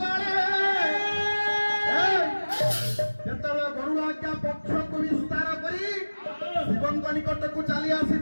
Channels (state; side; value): inverted; both; correlation -1.00